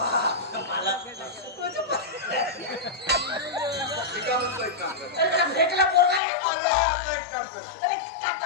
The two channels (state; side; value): drops out; right; at 6.2 s